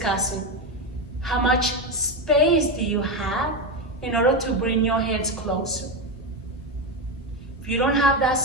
How much space do you have in order to bring your hands closer? If you don't have that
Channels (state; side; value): normal; both; correlation 0.12